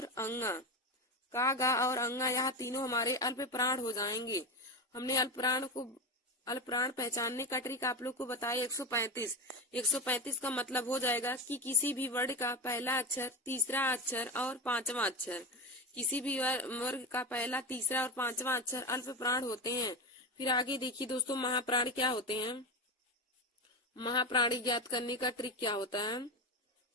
अंगा। का, गा और अंगा यह तीनों हमारे अल्प प्राण हो जाएंगे। हमने अल्प प्राण पहचानने का ट्रिक आप लोग को बताया 135। 135 का मतलब हो जाएगा कि किसी भी वर्ड का पहला अक्षर, तीसरा अक्षर और पांचवा अक्षर। किसी भी वर्ग का पहला, तीसरा और पांचवा अक्षर अल्प प्राण होते हैं। फिर आगे देखिए दोस्तों, महाप्राण क्या होते हैं। महाप्राणी ज्ञात करने का ट्रिक क्या होता है,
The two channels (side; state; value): both; normal; correlation 0.19